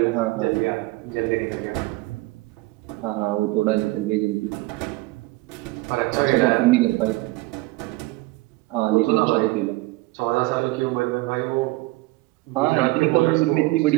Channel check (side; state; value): left; quieter; 20.8 dB